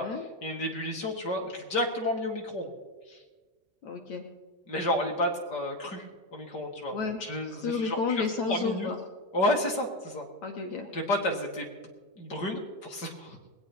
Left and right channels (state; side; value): late; right; 5.1 ms